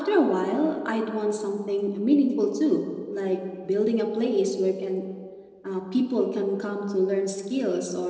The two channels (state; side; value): identical; both; correlation 1.00